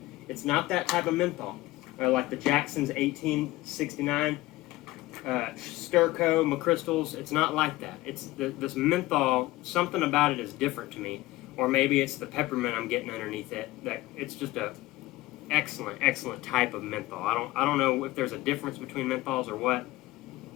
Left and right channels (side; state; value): right; quieter; 18.5 dB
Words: It's not that type of menthol. Like the Jackson's 1869, Sturco, McChrystals. It's not like that. It's this menthol. Something about it is different to me, or maybe it's the peppermint I'm getting underneath it. That it's just a excellent type of menthol. I don't know if there's a difference between menthols or what.